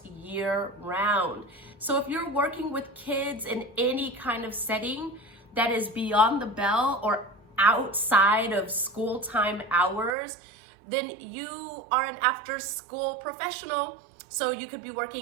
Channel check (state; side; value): drops out; left; at 10.2 s